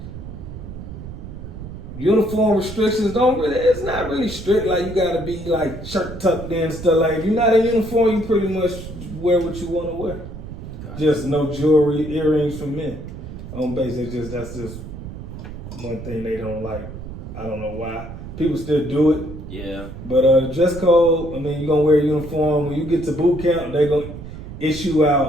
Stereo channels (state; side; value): noise; right; rumble, 11 dB below the sound